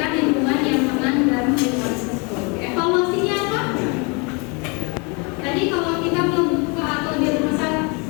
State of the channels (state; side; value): quieter; right; 31.6 dB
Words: lingkungan yang aman dan lingkungan tersebut. Evaluasinya apa? Tadi kalau kita membuka atau dia merasa